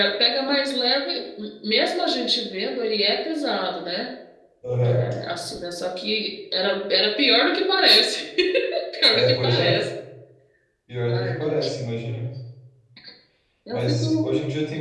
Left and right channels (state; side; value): identical; both; correlation 1.00